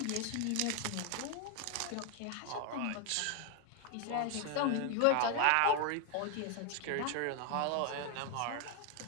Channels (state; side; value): different; both; correlation 0.00